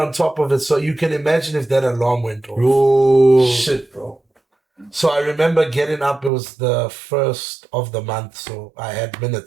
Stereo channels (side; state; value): left; drops out; at 6.3 s